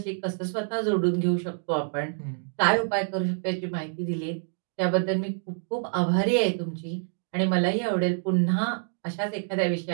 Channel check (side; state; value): left; silent; digital silence